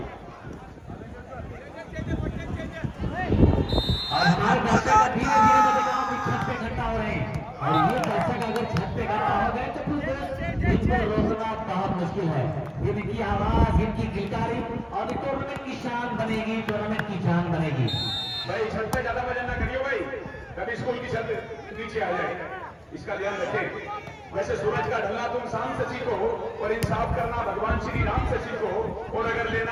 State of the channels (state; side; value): identical; both; correlation 1.00